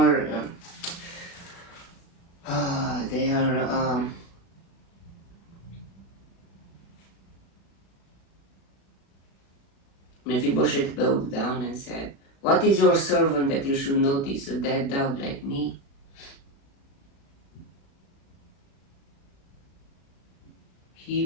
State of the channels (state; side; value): late; right; 36 ms